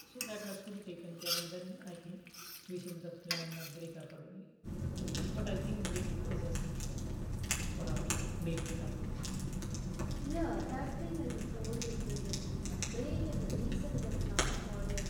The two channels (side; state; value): both; identical; correlation 1.00